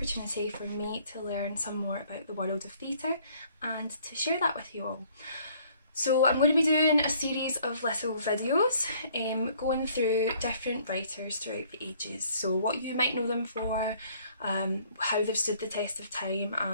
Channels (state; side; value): inverted; both; correlation -0.60